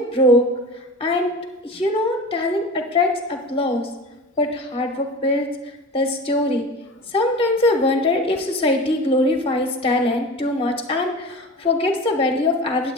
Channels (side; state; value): both; normal; correlation 0.33